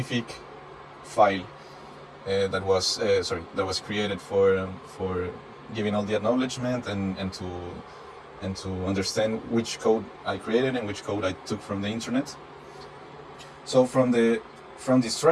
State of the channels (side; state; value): both; identical; correlation 1.00